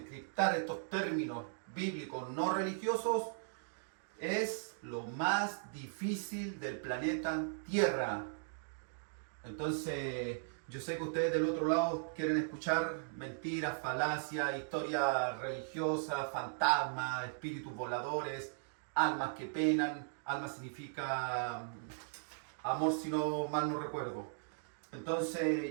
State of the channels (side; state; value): left; silent; digital silence